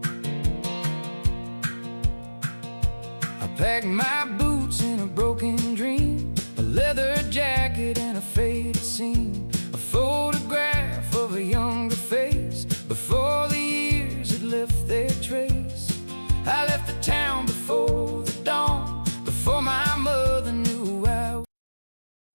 I packed my boots in a broken dream, a leather jacket and a faded scene, a photograph of a younger face before the years had left their trace. I left the town before the dawn, before my mother knew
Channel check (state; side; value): inverted; both; correlation -1.00